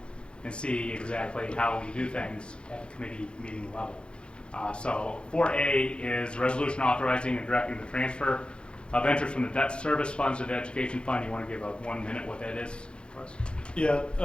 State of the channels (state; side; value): late; right; 0.055 ms